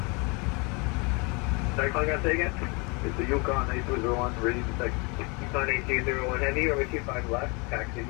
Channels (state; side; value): quieter; right; 30.2 dB